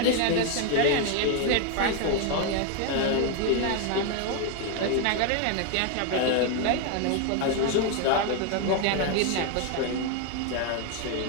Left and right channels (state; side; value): different; both; correlation 0.01